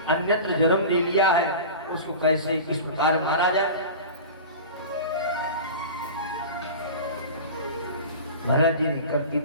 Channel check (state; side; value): inverted; both; correlation -0.33